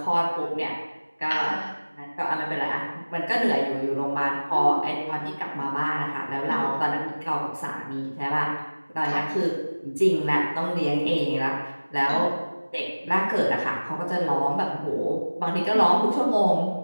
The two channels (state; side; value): inverted; both; correlation -1.00